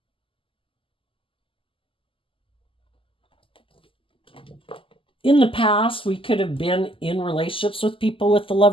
In the past, we could have been in relationships with people with the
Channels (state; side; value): late; right; 0.25 ms